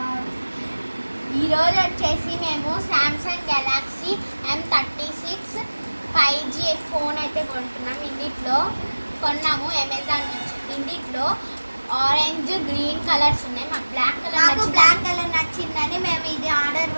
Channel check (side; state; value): both; inverted; correlation -1.00